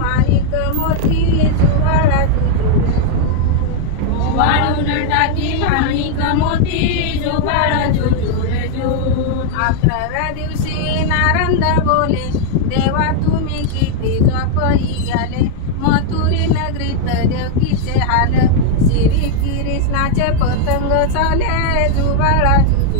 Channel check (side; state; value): both; different; correlation -0.01